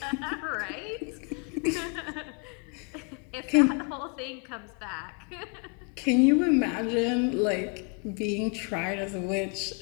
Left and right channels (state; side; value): quieter; right; 35.2 dB